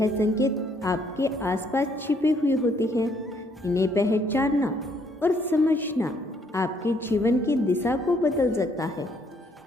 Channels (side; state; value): both; normal; correlation 0.68